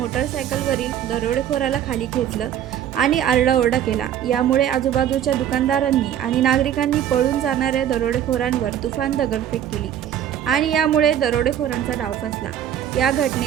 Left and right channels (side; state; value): left; quieter; 10.3 dB